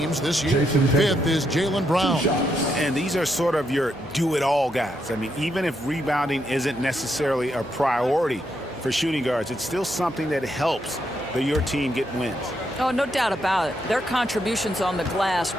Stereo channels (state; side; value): normal; both; correlation 0.79